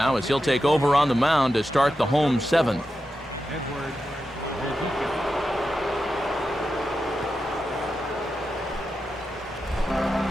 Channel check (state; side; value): normal; both; correlation 0.90